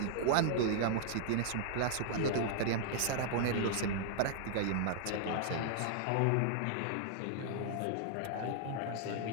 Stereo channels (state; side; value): different; both; correlation -0.01